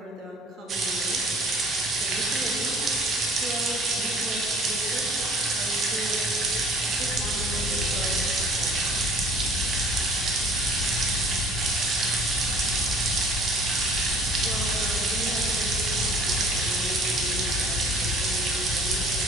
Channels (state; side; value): normal; both; correlation 0.50